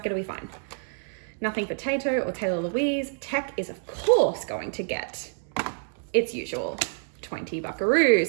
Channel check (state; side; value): silent; left; 59 dB below the other